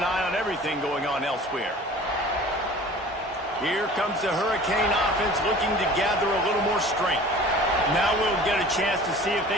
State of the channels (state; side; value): normal; both; correlation 0.44